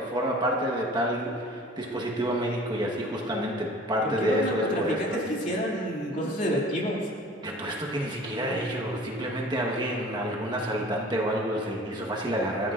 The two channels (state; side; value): normal; both; correlation 0.46